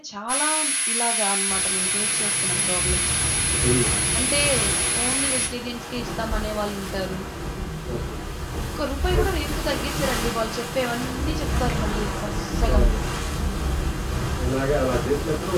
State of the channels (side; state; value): both; identical; correlation 1.00